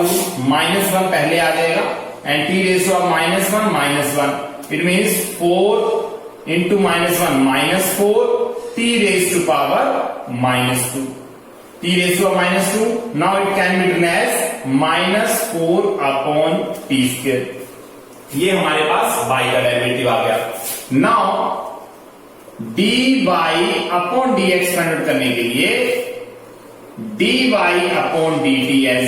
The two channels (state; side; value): identical; both; correlation 1.00